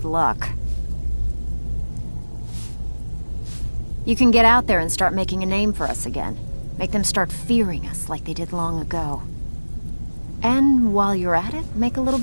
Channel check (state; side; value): inverted; both; correlation -1.00